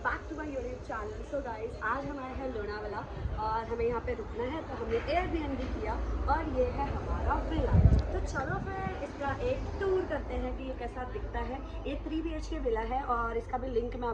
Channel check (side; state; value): both; identical; correlation 1.00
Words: back to my YouTube channel. So guys, आज हम आए हैं लोनावाला और हमें यहाँ पे रुकना है, तो हमने एयरबीएनबी किया और ये है हमारा विला। तो चलो फिर इसका एक टूर करते हैं कि ये कैसा दिखता है। ये 3 BHK विला है और इसका भी लिंक मैं